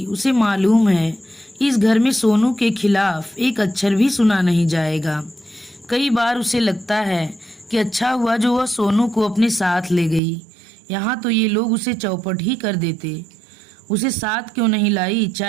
उसे मालूम है इस घर में सोनू के खिलाफ एक अक्षर भी सुना नहीं जाएगा। कई बार उसे लगता है कि अच्छा हुआ जो वह सोनू को अपने साथ ले गई। यहाँ तो ये लोग उसे चौपट ही कर देते। उसे साथ क्यों नहीं लाई?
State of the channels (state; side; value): drops out; left; at 10.2 s